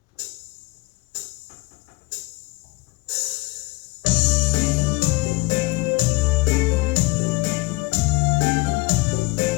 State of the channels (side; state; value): right; quieter; 23.7 dB